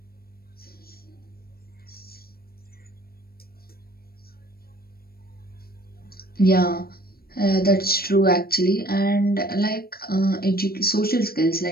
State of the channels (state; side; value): late; right; 0.44 ms